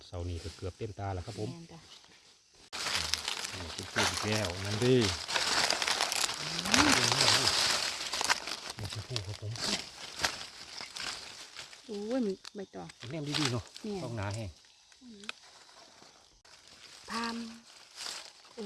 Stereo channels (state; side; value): identical; both; correlation 1.00